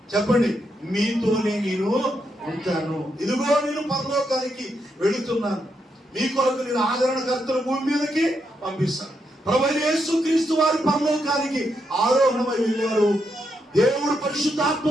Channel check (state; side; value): normal; both; correlation 0.81